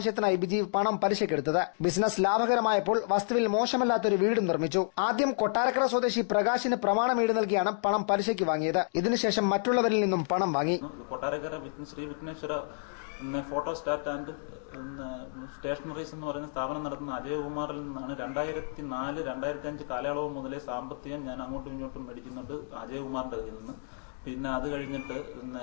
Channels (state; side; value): silent; right; digital silence